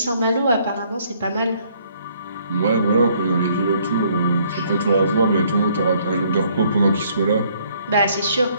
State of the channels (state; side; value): inverted; both; correlation -0.65